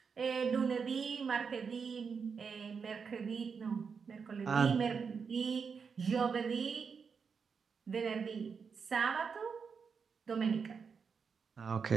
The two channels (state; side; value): quieter; left; 5.9 dB